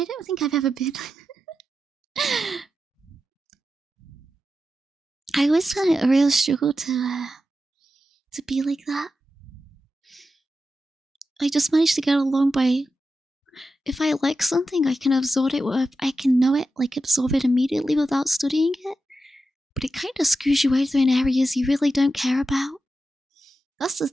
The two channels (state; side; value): normal; both; correlation 0.90